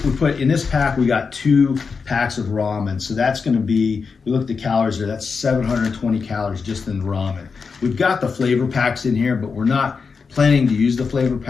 put in this pack, we got 2 packs of ramen. So that's going to be, we look at the calories there, that's 720 calories just in the ramen. We've got the flavor packs in here, but we're not planning to use the flavor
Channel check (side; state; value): right; quieter; 5.2 dB